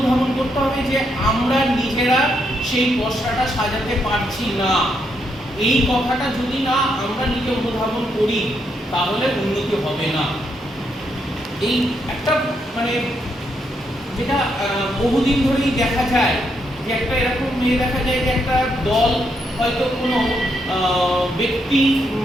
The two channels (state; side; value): normal; both; correlation 0.78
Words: করতে হবে যে আমরা নিজেরা সেই পসরাটা সাজাতে পারছি না। এই কথাটা যদি না আমরা নিজে অনুধাবন করি তাহলে উন্নতি হবে না। এই একটা মানে যেটা বহুদিন ধরেই দেখা যায় যে একটা এরকম মেয়ে দেখা যায় যে একটা দল হয়তো কোনো ব্যক্তি